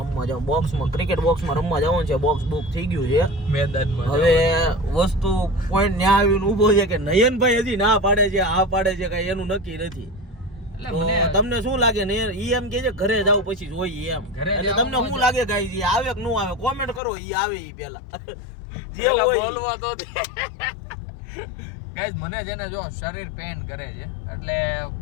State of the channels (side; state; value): right; drops out; at 17.0 s